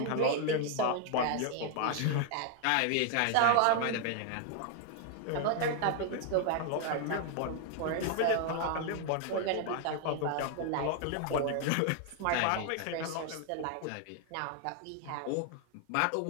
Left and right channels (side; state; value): both; different; correlation 0.00